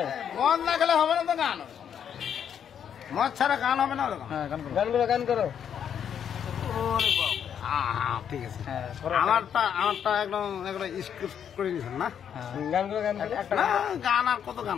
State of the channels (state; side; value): quieter; right; 8.5 dB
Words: মদ না খেলে হবে না তো গান মদ ছাড়া গান হবে না হ্যাঁ গান করো গান করো ঠিক আছে আমারটা একদম স্ক্রিপ্ট করে দিয়েছেন না গান করো গান করো না গান আর কত গান